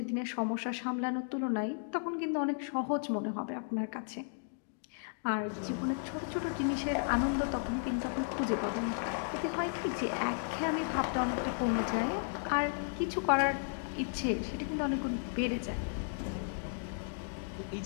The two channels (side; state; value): right; silent; digital silence